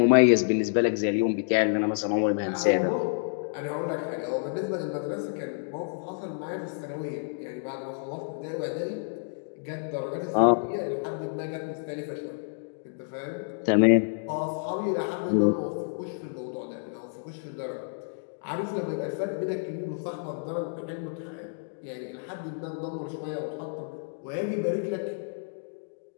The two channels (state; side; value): silent; right; digital silence